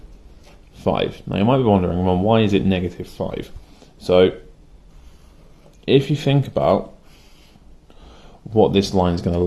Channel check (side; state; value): both; identical; correlation 1.00